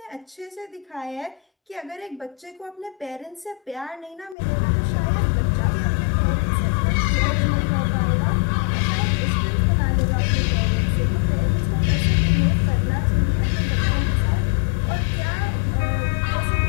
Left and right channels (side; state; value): right; drops out; at 4.4 s